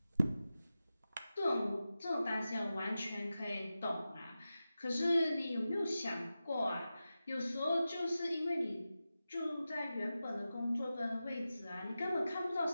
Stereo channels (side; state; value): both; inverted; correlation -0.93